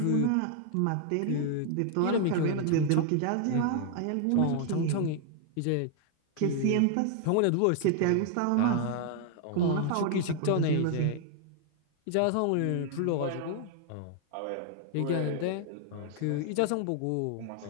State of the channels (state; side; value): different; both; correlation 0.00